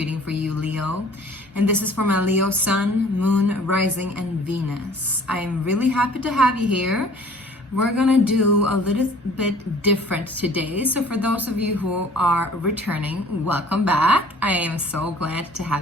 for you, Leo. And this is for my Leo Sun, Moon, Rising, and Venus. I'm really happy to have you here. We're going to do a little bit different today. So for those of you who are returning, welcome back. I am so glad to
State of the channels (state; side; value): normal; both; correlation 0.51